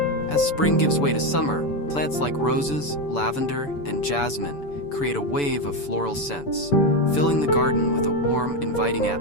As spring gives way to summer, plants like roses, lavender, and jasmine create a wave of floral scents, filling the garden with a warm, inviting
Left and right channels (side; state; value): right; late; 6.9 ms